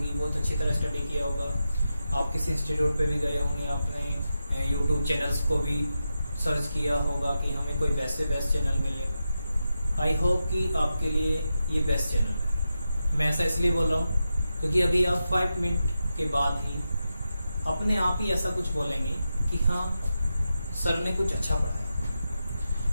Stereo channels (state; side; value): inverted; both; correlation -0.89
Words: बहुत अच्छी तरह स्टडी किया होगा। आप किसी इंस्टीट्यूट पे भी गए होंगे, आपने YouTube चैनल्स को भी सर्च किया होगा कि हमें कोई बेस्ट चैनल मिले। आई होप कि आपके लिए ये बेस्ट चैनल है। मैं ऐसा इसलिए बोल रहा हूँ क्योंकि अभी आप 5 मिनट के बाद ही अपने आप ही ऐसा कुछ बोलेंगे कि हाँ सर ने कुछ अच्छा